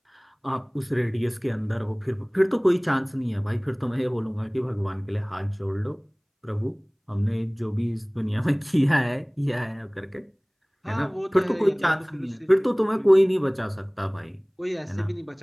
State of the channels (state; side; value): identical; both; correlation 1.00